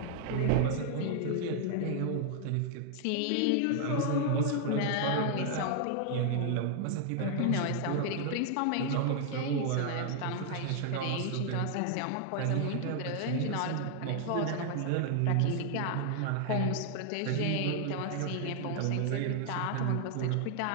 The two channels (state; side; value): different; both; correlation 0.00